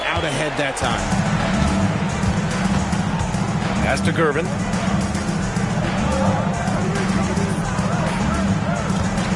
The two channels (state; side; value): identical; both; correlation 1.00